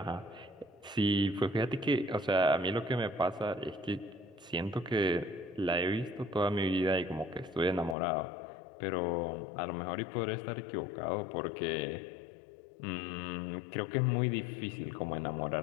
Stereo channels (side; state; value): right; drops out; at 8.0 s